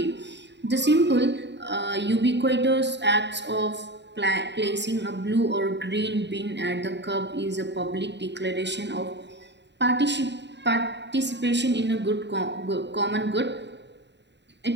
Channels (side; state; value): left; late; 0.51 ms